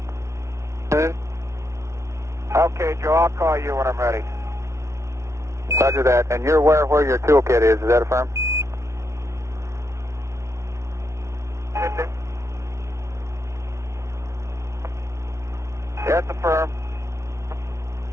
Okay, Joe, I'll call you when I'm ready. Roger that. And you're aware where your toolkit is that affirm? That's affirm.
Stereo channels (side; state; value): left; late; 0.14 ms